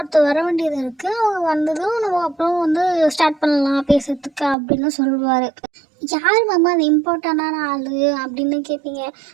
வர வேண்டியது இருக்குது, அவங்க வந்ததும் நம்ம அப்புறம் வந்து ஸ்டார்ட் பண்ணலாம் பேசுறதுக்கு அப்படின்னு சொல்லுவார். யார் மாமா அந்த இம்பார்ட்டண்டான ஆள் அப்படின்னு கேட்பீங்க.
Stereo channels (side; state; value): left; drops out; at 4.5 s